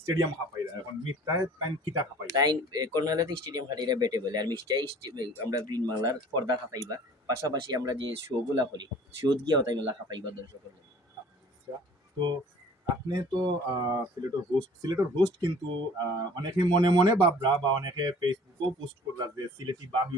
স্টেডিয়াম খাপাইরা, এখন মিথ্যায় তাইন কিতা খাপাই? তাই কর্নওয়ালাতে স্টেডিয়াম খাটিরা বেটে বলে, আর মিষ্টাই আমরা গ্রিন বাংলার পর্দা খাপাইবা। পাশাপাশি আমরা যে শো গুলা করি, শোত গিয়াও তাই মেলা খাপাইবা দর্শকের। আচ্ছা, তো আপনি তো সিলেটের হোস্ট কিন্তু অনেকে মনে মনে বাবরা বা অনেকে ফেসবুকও পোস্ট করলা যে সিলেটি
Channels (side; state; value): both; normal; correlation 0.49